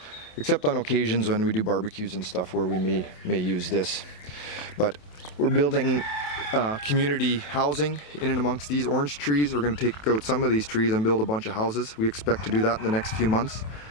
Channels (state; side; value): late; right; 27 ms